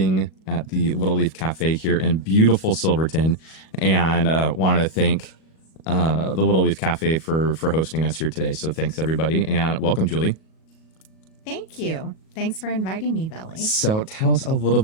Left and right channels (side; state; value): right; late; 37 ms